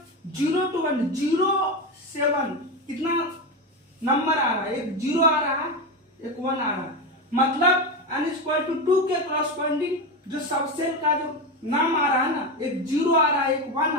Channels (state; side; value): normal; both; correlation 0.16